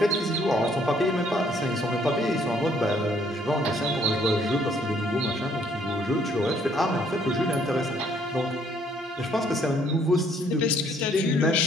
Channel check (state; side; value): normal; both; correlation 0.64